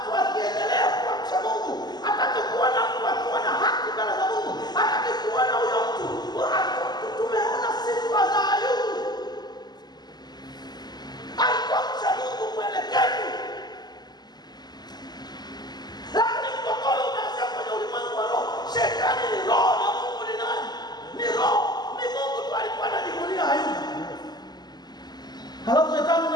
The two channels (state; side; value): late; right; 0.20 ms